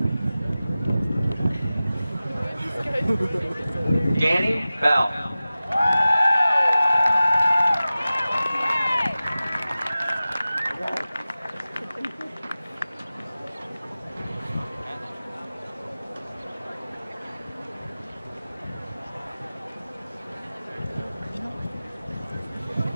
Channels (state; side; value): inverted; both; correlation -0.96